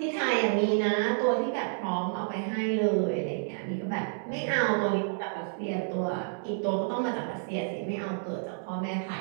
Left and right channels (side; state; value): left; silent; 58 dB below the other